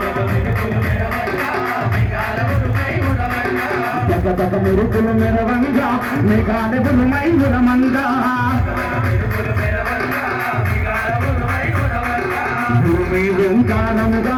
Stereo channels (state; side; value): identical; both; correlation 1.00